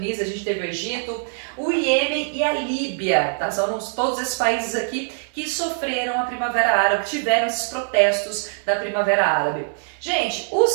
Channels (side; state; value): left; silent; digital silence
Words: a gente teve o Egito, o Iêmen e a Líbia, tá? São todos esses países aqui que sofreram a Primavera Árabe, tiveram esses protestos da Primavera Árabe. Gente,